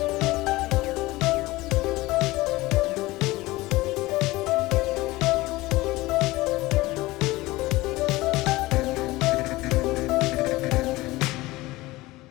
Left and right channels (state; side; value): quieter; right; 19.6 dB